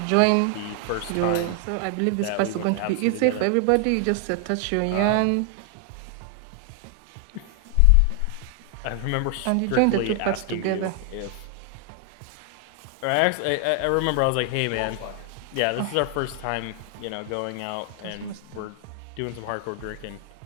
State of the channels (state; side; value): different; both; correlation 0.00